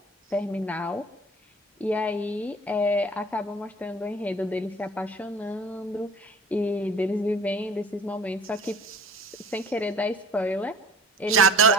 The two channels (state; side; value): normal; both; correlation 0.45